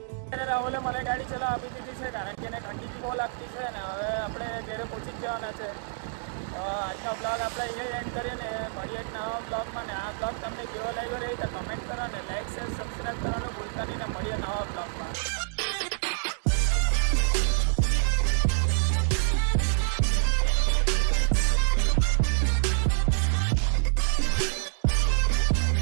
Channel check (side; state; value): left; silent; digital silence